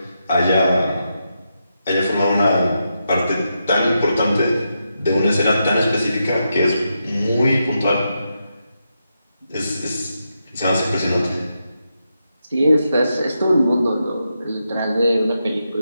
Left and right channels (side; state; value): both; inverted; correlation -0.85